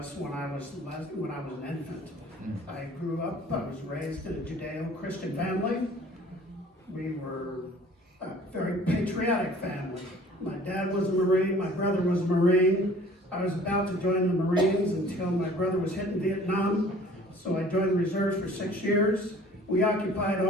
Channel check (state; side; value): normal; both; correlation 0.50